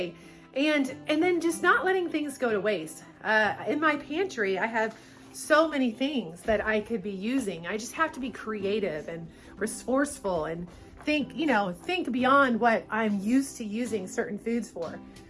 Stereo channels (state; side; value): identical; both; correlation 1.00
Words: And then just not letting things go to waste. In my pantry, I have so many things that I could be using. I just have to be creative and resourceful and think beyond what I'm used to using certain foods for.